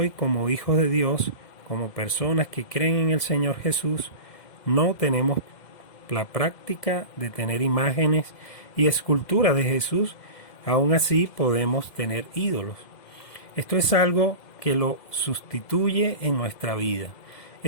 como hijos de Dios, como personas que creen en el Señor Jesús, no tenemos la práctica de tener imágenes y esculturas de Jesús. Aún así podemos tener ídolos. Esto es algo que lo sustituye en nuestra vida.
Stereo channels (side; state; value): right; late; 2.1 ms